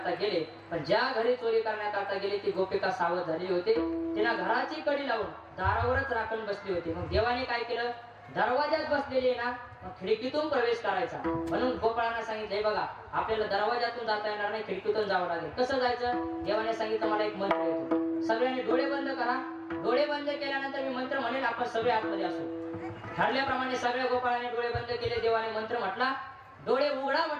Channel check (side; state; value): both; identical; correlation 1.00